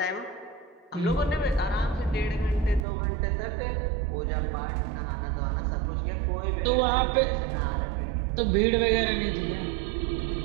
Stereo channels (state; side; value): drops out; left; at 2.9 s